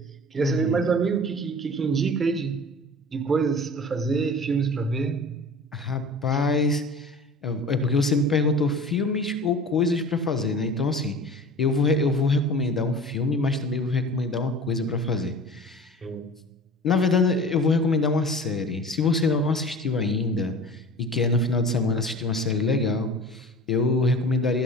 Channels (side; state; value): both; normal; correlation 0.40